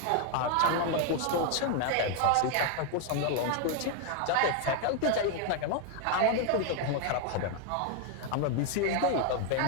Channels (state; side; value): different; both; correlation 0.01